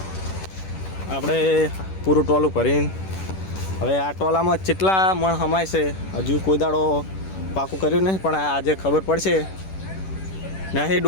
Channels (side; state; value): right; late; 10 ms